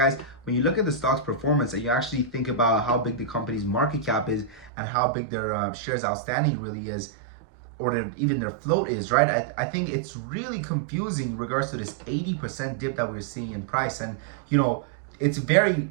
when you look at the stock's performance and you actually think about how big the company's market cap is and how big their shares outstanding really is, or even their float is, right? I think it's really confusing in regards to this 80% dip that we're seeing in price. And, you know, it's very,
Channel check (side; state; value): left; drops out; at 4.7 s